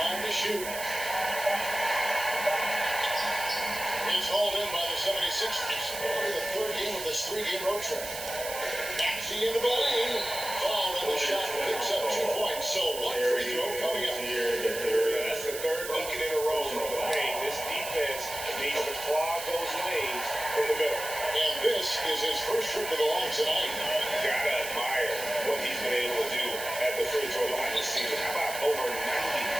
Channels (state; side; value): noise; right; hiss, 8 dB below the sound